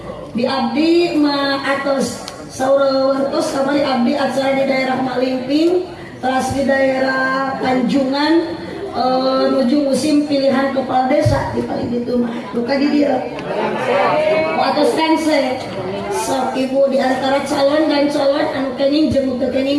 Di abdi ma atos saurawartos kamari abdi acara di daerah Malimping, teras di daerah Tanjungan, menuju musim pilihan kepala desa di paling itu mah buka di dia atas kanse sok ibu di antara calon dan calon anu kening jeung teu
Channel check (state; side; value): identical; both; correlation 1.00